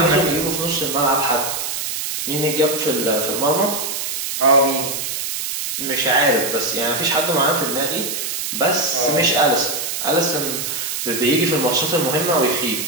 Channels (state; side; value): noise; right; hiss, 3 dB below the sound